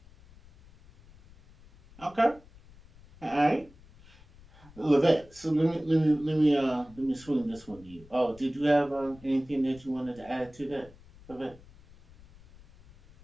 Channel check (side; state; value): left; noise; rumble, 24 dB below the sound